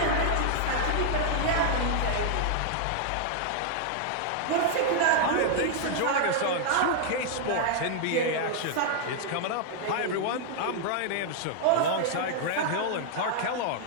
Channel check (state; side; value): different; both; correlation -0.01